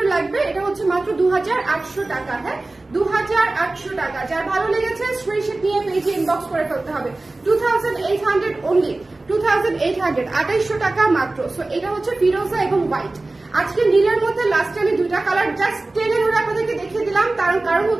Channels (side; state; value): left; quieter; 3.0 dB